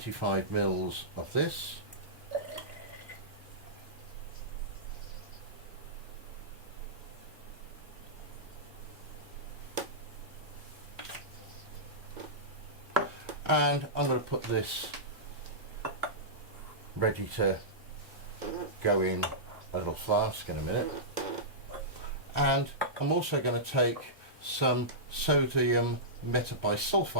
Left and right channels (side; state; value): both; normal; correlation -0.16